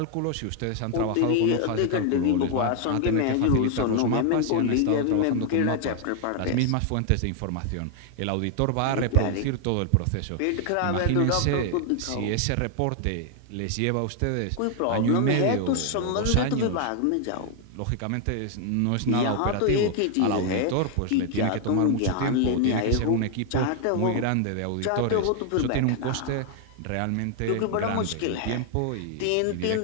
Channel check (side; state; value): both; different; correlation 0.00